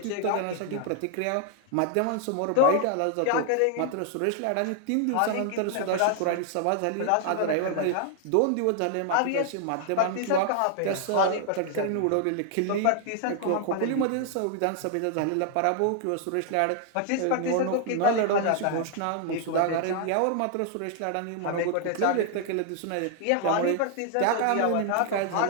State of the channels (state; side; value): different; both; correlation 0.00